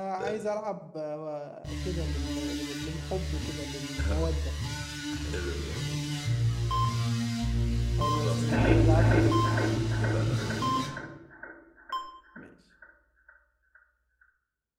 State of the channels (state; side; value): identical; both; correlation 1.00